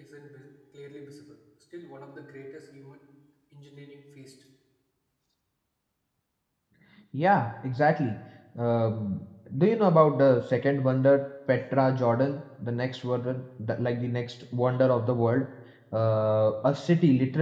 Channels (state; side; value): identical; both; correlation 1.00